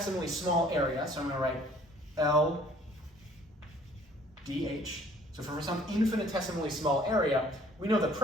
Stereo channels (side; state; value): both; normal; correlation 0.56